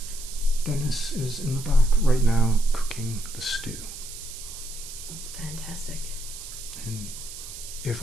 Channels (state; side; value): noise; right; hiss, 11 dB below the sound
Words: Dennis is in the back right now cooking the stew. fantastic. And if